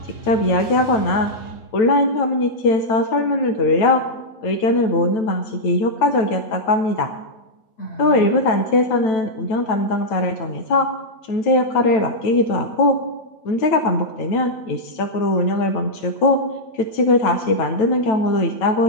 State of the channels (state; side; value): late; right; 9.1 ms